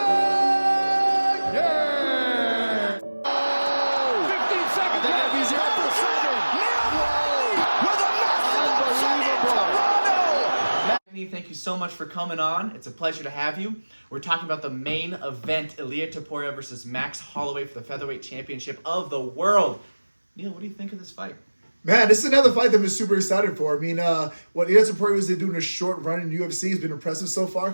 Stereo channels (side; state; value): both; inverted; correlation -1.00